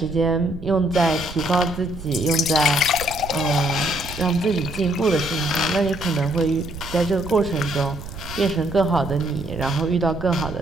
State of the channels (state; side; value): noise; right; rumble, 12 dB below the sound